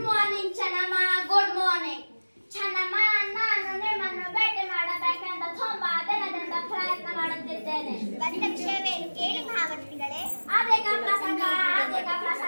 morning Channamma. Good morning Channamma. ನಾನು ನಿಮ್ಮನ್ನು ಭೇಟಿ ಮಾಡಬೇಕೆಂದು ತುಂಬಾ ದಿನದಿಂದ ಪ್ರಯತ್ನ ಮಾಡುತ್ತಿದ್ದೇನೆ. ಬಂದ ವಿಷಯವೇನು ಕೇಳಿ ಮಹಾಮಂತ್ರಿಗಳೇ? ಅದೇಕ ಪ್ರಸಂಗ.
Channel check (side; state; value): both; inverted; correlation -1.00